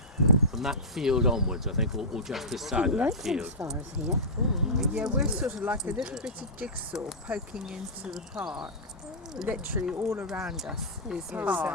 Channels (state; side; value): normal; both; correlation -0.14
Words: from that field onwards, I think, or just this side of that field. As far as here. Yeah, we're sort of like a little bit of jigsaw poking into the park. Literally all around us is